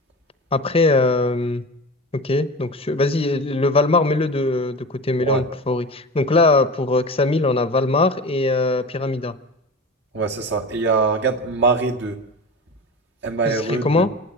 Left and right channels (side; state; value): both; normal; correlation 0.31